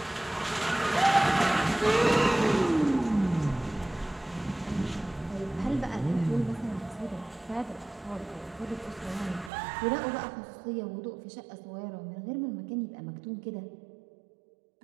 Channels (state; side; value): drops out; left; at 9.5 s